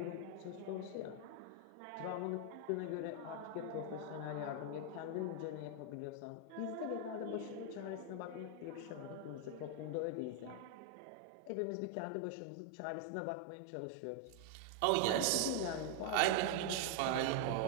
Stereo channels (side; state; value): both; different; correlation 0.00